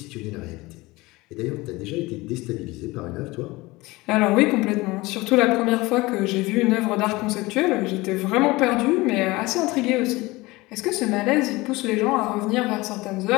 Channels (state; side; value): quieter; right; 21.4 dB